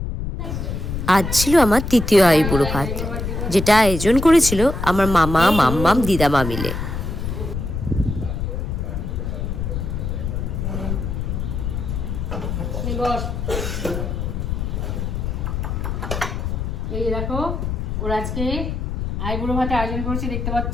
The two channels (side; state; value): left; noise; rumble, 3 dB below the sound